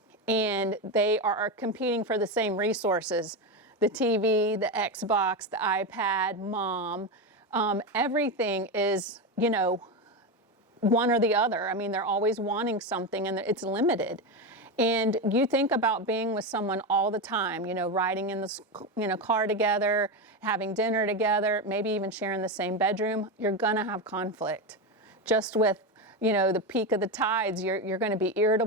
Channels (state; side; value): normal; both; correlation 0.14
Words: And they are competing for the same resources: the TV, the Xbox, the iPad, mom. Everything is, one or the other. I mean, they're always wanting something, and it's limited. And you think about being with someone all the time, riding in the car together, having dinner together, maybe even sharing the same bedroom. You're gonna have conflict. Just with the peak of the tides, you're going to be